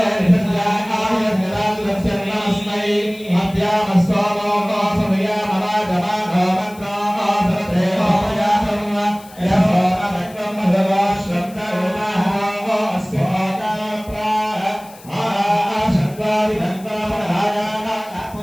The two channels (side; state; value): left; noise; hiss, 22 dB below the sound